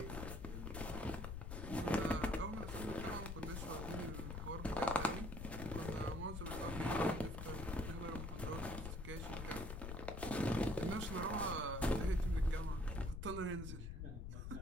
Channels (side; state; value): left; noise; rumble, 5 dB below the sound